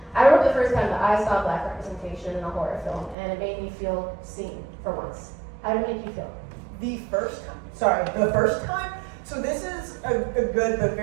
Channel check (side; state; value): left; drops out; at 3.2 s